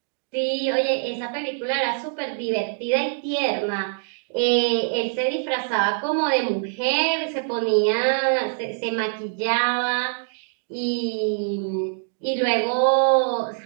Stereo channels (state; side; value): silent; left; digital silence